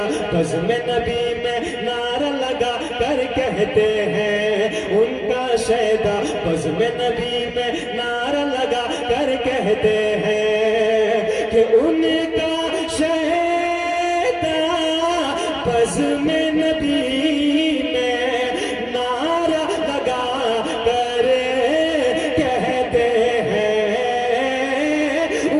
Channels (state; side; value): identical; both; correlation 1.00